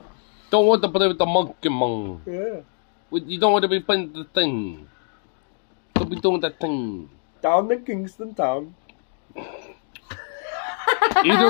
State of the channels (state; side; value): silent; right; digital silence